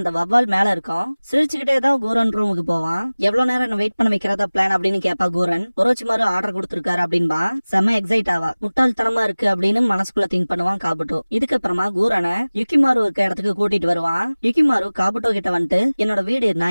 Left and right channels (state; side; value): inverted; both; correlation -0.99